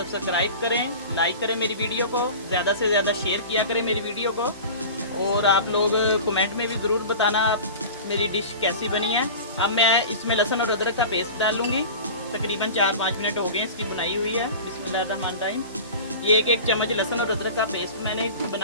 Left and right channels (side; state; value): both; inverted; correlation -0.35